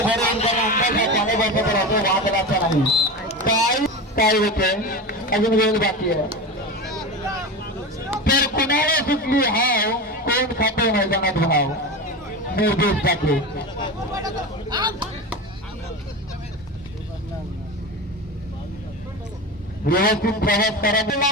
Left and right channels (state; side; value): normal; both; correlation 0.25